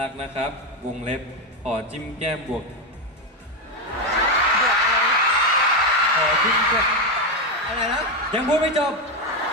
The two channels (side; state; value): both; normal; correlation 0.09